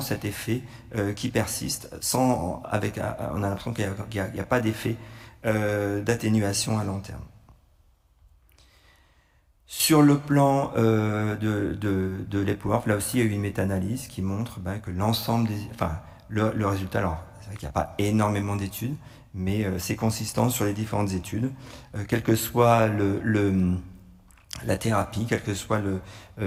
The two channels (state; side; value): identical; both; correlation 1.00